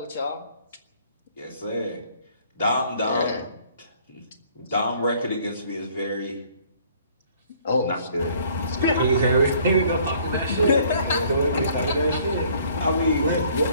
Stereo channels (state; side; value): inverted; both; correlation -0.59